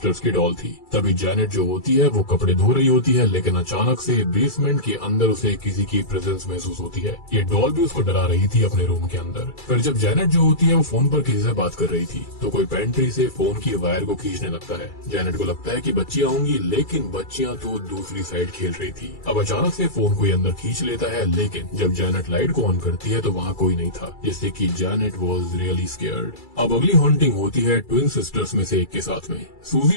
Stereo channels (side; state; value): right; late; 2.3 ms